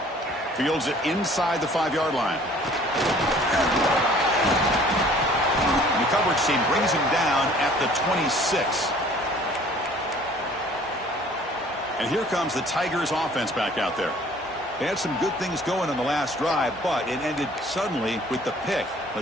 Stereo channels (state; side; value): normal; both; correlation 0.53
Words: Fields it inside the 5-yard line. And the coverage team brings him down at the 26. And here comes the Tigers offense back out there. They had some good things going on the last drive, but it ended suddenly with the pick.